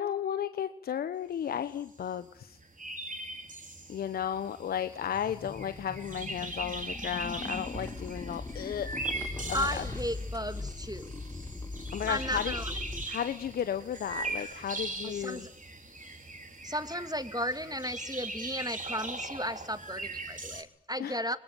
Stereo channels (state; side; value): quieter; right; 3.2 dB